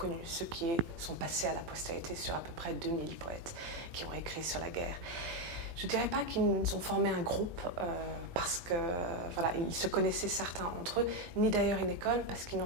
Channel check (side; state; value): left; late; 18 ms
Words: ceux qui sont passés à la postérité sur à peu près 2000 poètes qui ont écrit sur la guerre. Je ne dirais pas qu'ils ont formé un groupe parce que voilà, ils se connaissaient certains entre eux, ni d'ailleurs une école parce qu'ils